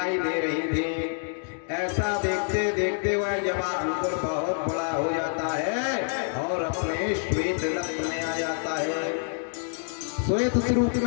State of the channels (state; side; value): silent; right; 60 dB below the other